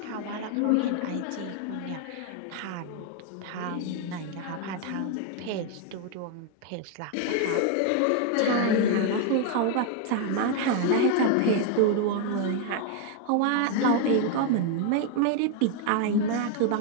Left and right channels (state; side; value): different; both; correlation 0.01